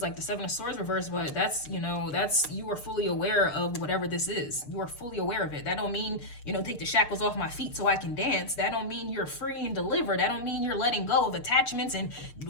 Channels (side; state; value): right; late; 6.6 ms